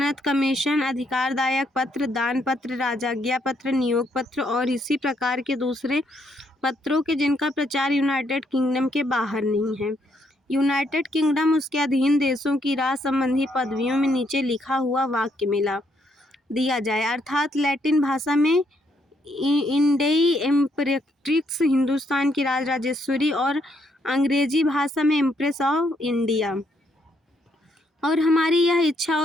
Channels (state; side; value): normal; both; correlation 0.73